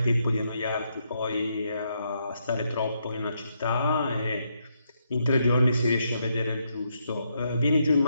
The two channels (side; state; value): both; inverted; correlation -0.78